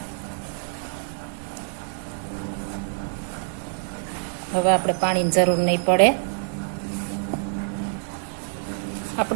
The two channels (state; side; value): silent; left; 57 dB below the other